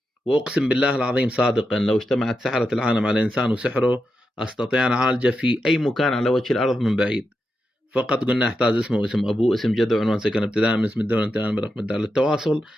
وأقسم بالله العظيم صادقا لو اجتمعت سحرة العالم على إنسان وسحره أستطيع أن أعالجه في أي مكان على وجه الأرض من بعيد، فقط قلنا احتاج اسمه واسم ابوه اسم جده وعنوان سكن ابتداء من اسم الدوله انتهاء برقم الدار. للتواصل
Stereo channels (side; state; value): both; normal; correlation 0.87